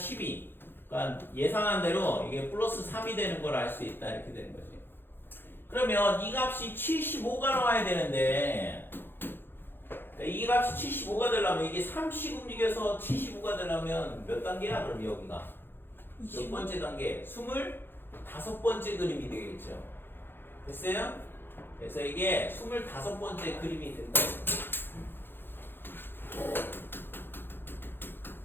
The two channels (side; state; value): right; late; 0.10 ms